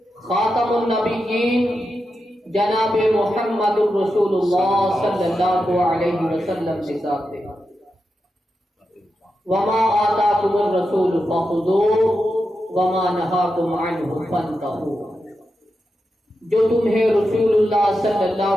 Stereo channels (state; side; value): normal; both; correlation 0.88